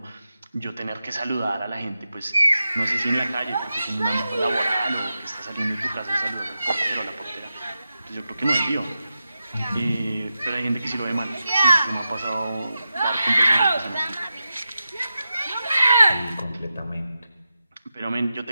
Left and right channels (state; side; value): inverted; both; correlation -0.90